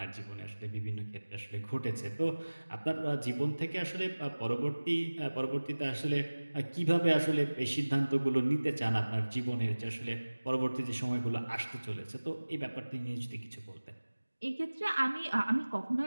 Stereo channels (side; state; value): both; inverted; correlation -1.00